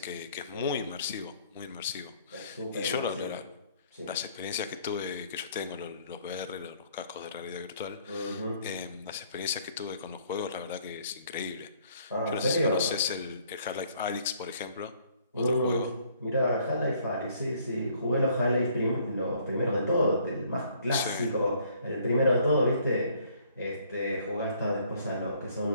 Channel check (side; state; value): both; inverted; correlation -0.63